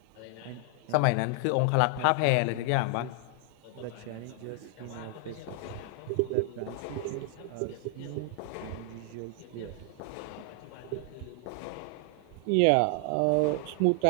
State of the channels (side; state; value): both; different; correlation 0.00